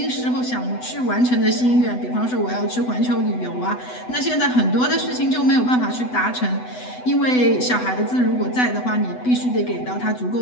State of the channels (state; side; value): late; right; 8.0 ms